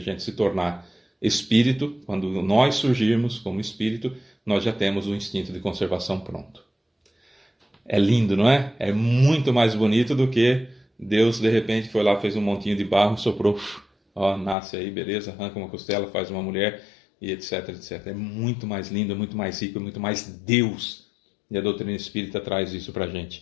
se tornar espírito, quando nós surgirmos como espírito, nós já temos o instinto de conservação pronto. É lindo, não é? É muito mais bonito do que Deus, de repente, foi lá, fez um montinho de barro, soprou, ó, nasce aí, beleza, arranca uma costela, faz uma mulher, e etc, etc. É muito mais lindo, é muito mais rico, é muito mais Deus. E a doutrina espírita traz isso pra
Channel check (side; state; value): right; drops out; at 14.6 s